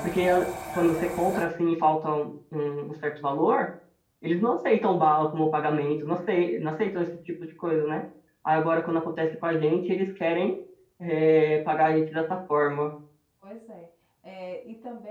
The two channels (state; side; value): identical; both; correlation 1.00